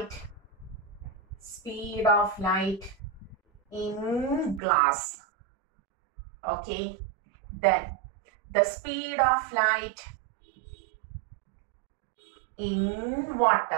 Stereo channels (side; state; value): left; drops out; at 4.6 s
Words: in glass. Okay, then the speed of light in